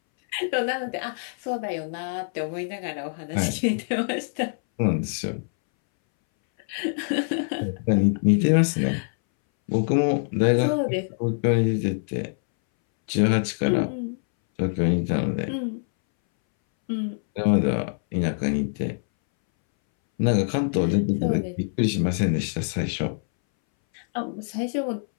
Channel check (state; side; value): silent; right; 61 dB below the other